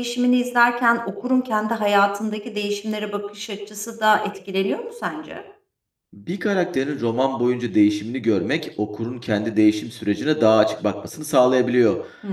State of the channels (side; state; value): both; identical; correlation 1.00